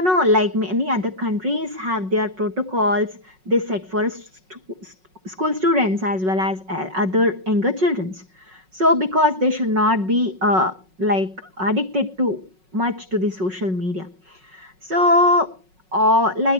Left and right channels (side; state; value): left; late; 5.4 ms